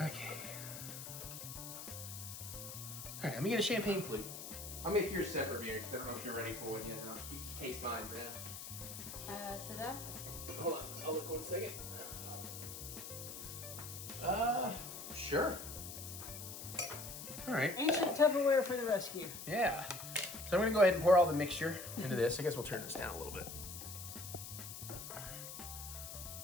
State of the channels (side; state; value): left; noise; hiss, 9 dB below the sound